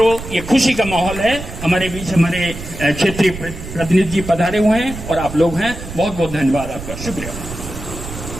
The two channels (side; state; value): right; noise; rumble, 10 dB below the sound